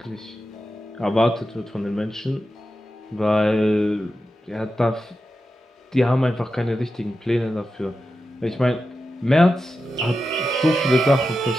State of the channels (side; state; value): both; normal; correlation 0.91